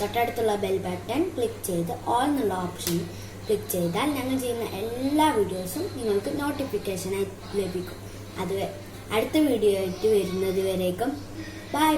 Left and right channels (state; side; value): identical; both; correlation 1.00